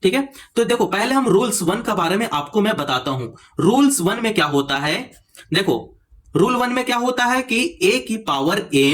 ठीक है, तो देखो पहले हम रूल्स 1 के बारे में आपको मैं बताता हूं। रूल्स 1 में क्या होता है, देखो रूल 1 में क्या होता है कि a की पावर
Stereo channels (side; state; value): both; identical; correlation 1.00